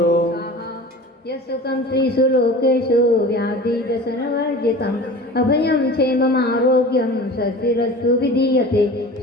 यस्सुखं त्रिषु लोकेषु व्याधिव्यसनवर्जितम् अभयं क्षेममारोग्यं स्वस्तिरस्तु विधीयते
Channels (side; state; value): both; normal; correlation 0.38